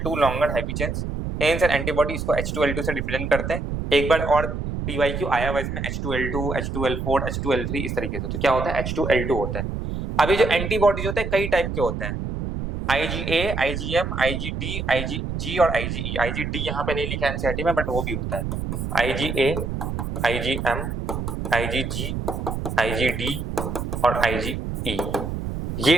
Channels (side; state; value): right; noise; rumble, 4 dB below the sound